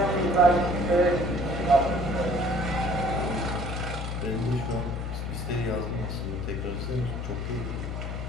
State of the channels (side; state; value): left; noise; hum, 4 dB below the sound